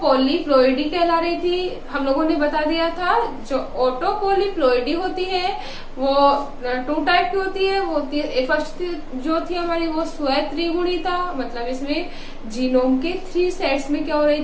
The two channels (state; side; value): identical; both; correlation 1.00